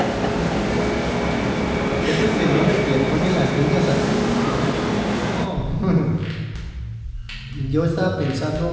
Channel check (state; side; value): identical; both; correlation 1.00